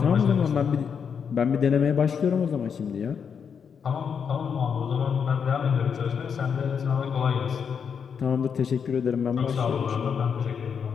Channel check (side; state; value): right; quieter; 6.8 dB